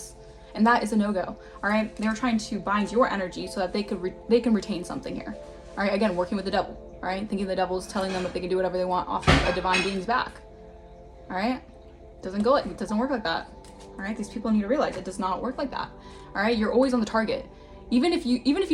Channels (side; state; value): both; identical; correlation 1.00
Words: and that is a no-go. All right, they're trying to bind your energy so that they can retain something here. All right, again, working with the devil. All right, thinking the devil is telling them that they can do whatever they want off of a divine being's back. All right, it doesn't work like that. All right, these people need to realize it does not work like that. All right, you're always on the target. Even if you